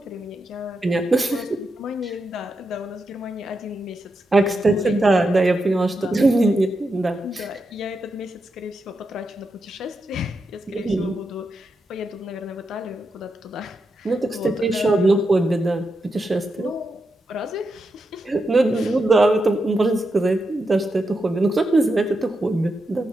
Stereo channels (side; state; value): both; normal; correlation 0.86